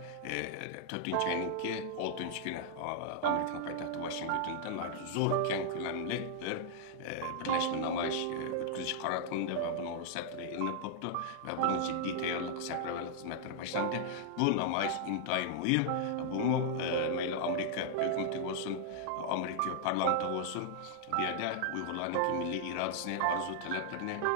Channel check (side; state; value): both; different; correlation -0.01